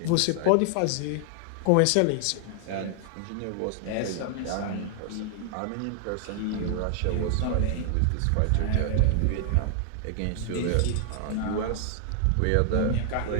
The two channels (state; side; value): different; both; correlation 0.00